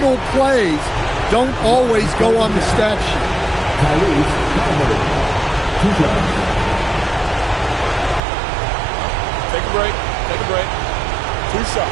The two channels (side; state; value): left; drops out; at 8.2 s